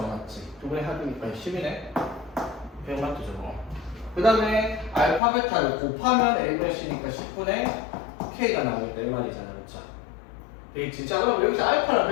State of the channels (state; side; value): drops out; right; at 5.2 s